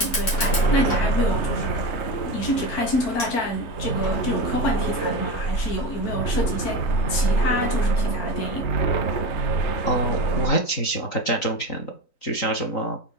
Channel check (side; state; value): right; late; 3.9 ms